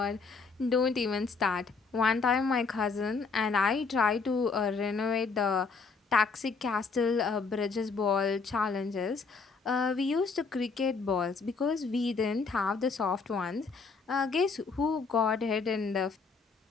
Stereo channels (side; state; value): right; quieter; 4.6 dB